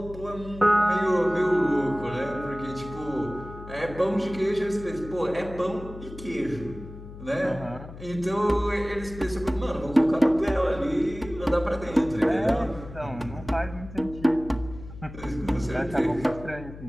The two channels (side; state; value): left; noise; hum, 14 dB below the sound